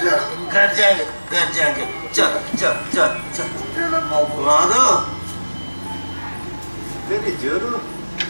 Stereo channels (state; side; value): inverted; both; correlation -1.00